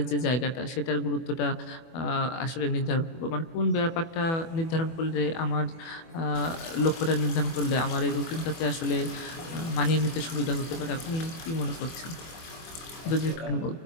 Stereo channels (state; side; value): late; right; 24 ms